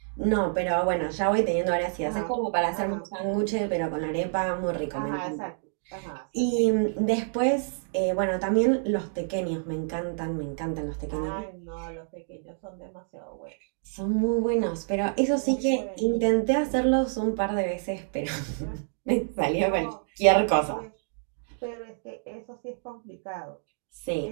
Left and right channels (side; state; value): left; silent; digital silence